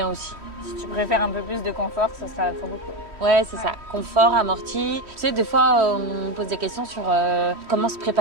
aussi. Si tu préfères un peu plus de confort, ça sera très beaucoup. Ouais, c'est ça. Confort, amorti. Tu sais, des fois, on me pose des questions sur comment se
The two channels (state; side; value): late; left; 3.1 ms